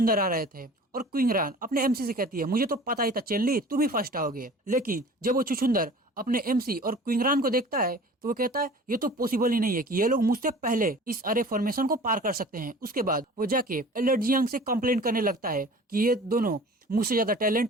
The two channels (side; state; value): both; normal; correlation 0.43